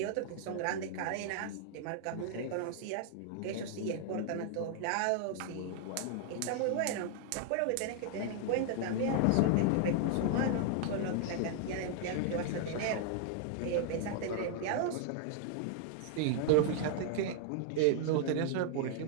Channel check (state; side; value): different; both; correlation 0.00